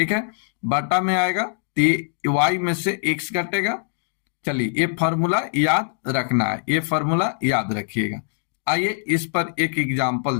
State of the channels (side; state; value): right; silent; digital silence